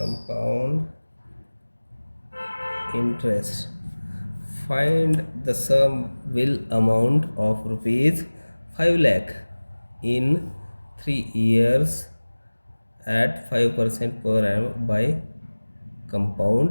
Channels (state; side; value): inverted; both; correlation -1.00